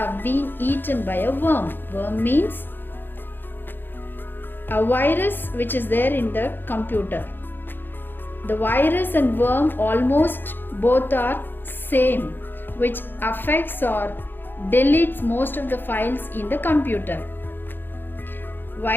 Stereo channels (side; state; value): right; late; 0.097 ms